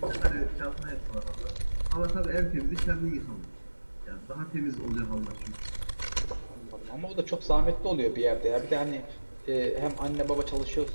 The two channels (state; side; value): inverted; both; correlation -1.00